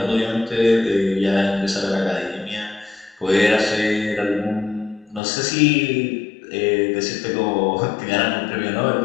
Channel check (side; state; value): right; drops out; at 5.2 s